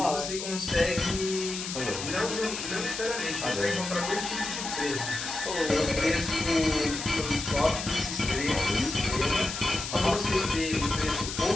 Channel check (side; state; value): left; noise; hiss, 6 dB below the sound